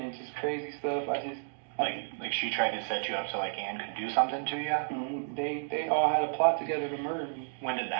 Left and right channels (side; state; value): left; silent; digital silence